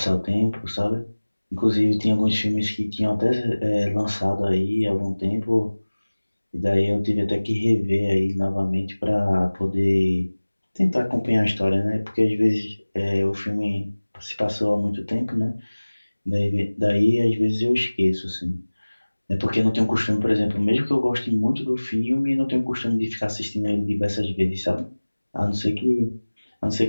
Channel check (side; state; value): both; inverted; correlation -1.00